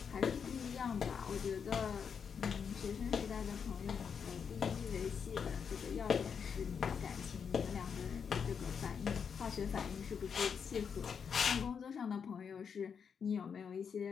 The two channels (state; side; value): quieter; right; 6.7 dB